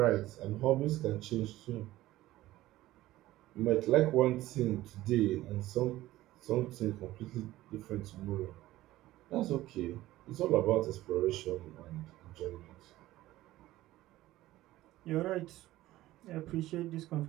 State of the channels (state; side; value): quieter; left; 16.1 dB